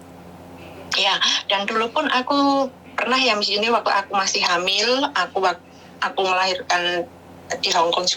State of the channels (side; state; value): both; identical; correlation 1.00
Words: Ya, dan dulu pun aku pernah ya Miss Yuni waktu aku masih hamil, aku melahirkan di Hong Kong